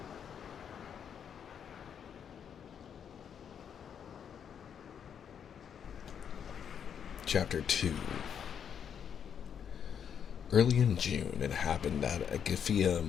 Chapter 2. Early in June, it happened that Agafia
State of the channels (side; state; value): right; quieter; 8.0 dB